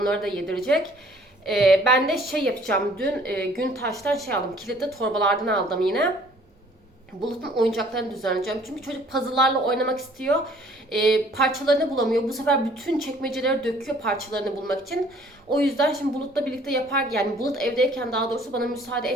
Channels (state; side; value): normal; both; correlation 0.56